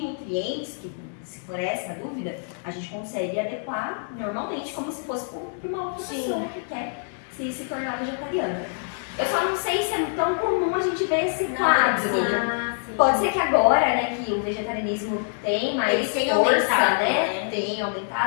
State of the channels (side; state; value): right; silent; 62 dB below the other